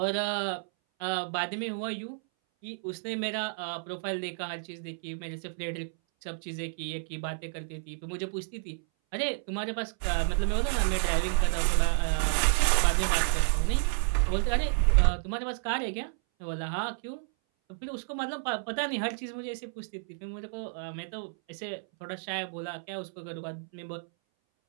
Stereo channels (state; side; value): silent; left; 57 dB below the other